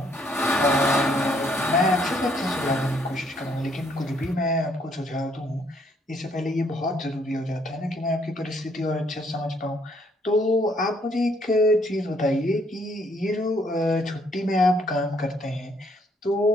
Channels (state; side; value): normal; both; correlation 0.68